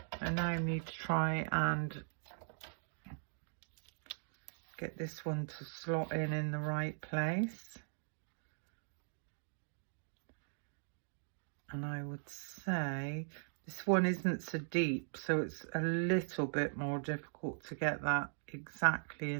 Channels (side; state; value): left; silent; digital silence